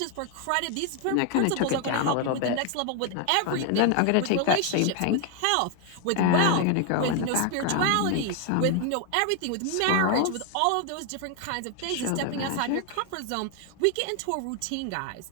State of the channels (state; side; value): different; both; correlation 0.01